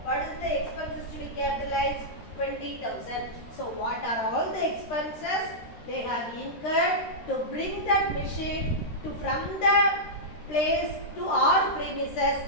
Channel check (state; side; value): late; right; 13 ms